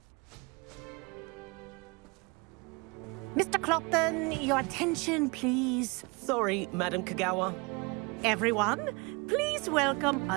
Mr. Clopton, your attention, please. Sorry, Madam Kagawa. Everyone, please welcome a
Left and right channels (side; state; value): left; quieter; 28.3 dB